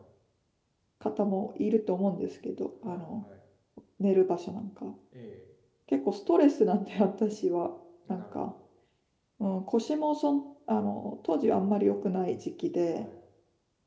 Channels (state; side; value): identical; both; correlation 1.00